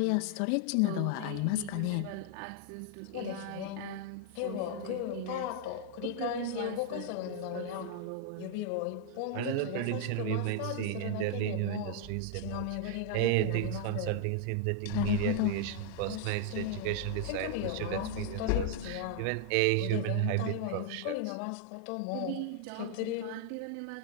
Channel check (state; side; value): different; both; correlation 0.00